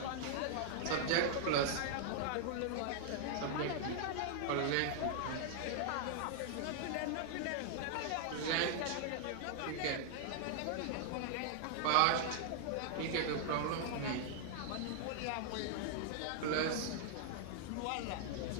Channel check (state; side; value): different; both; correlation -0.01